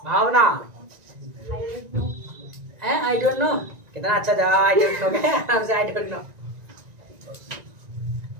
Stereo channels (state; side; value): late; left; 1.9 ms